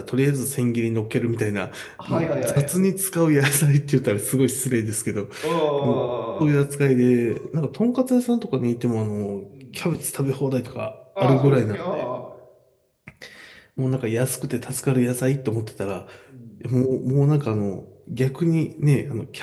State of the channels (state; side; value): identical; both; correlation 1.00